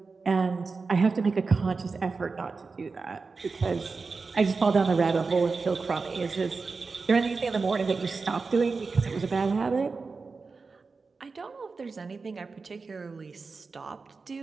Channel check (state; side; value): quieter; left; 4.4 dB